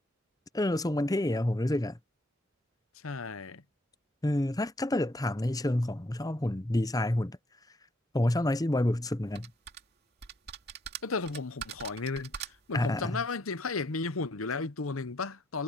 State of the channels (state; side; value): normal; both; correlation 0.72